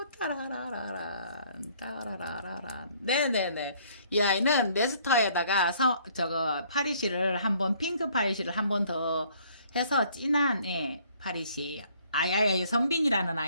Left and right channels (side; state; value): both; inverted; correlation -0.61